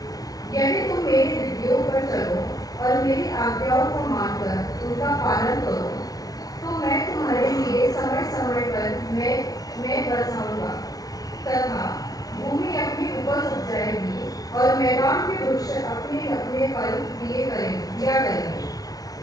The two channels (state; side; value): late; right; 0.18 ms